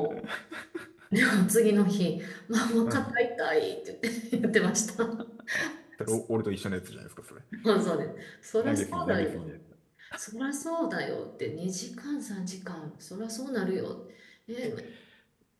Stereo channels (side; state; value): both; identical; correlation 1.00